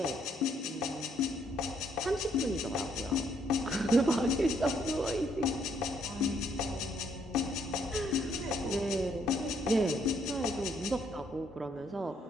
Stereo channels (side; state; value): both; normal; correlation 0.70